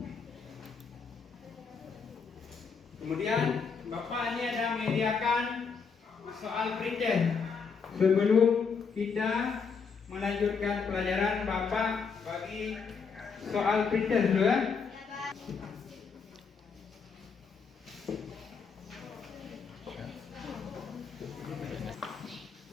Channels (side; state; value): right; quieter; 5.6 dB